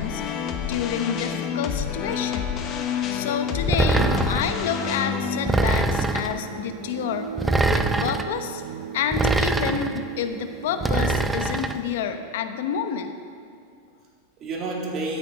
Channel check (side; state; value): both; normal; correlation 0.32